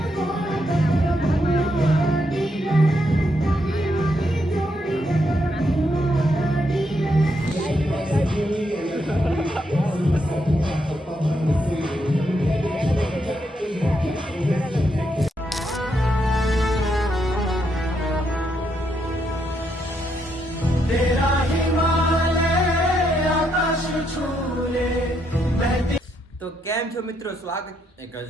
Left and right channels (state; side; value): normal; both; correlation 0.78